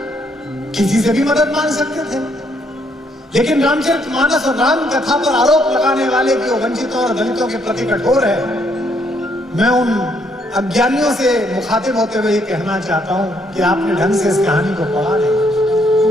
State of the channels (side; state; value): both; normal; correlation 0.71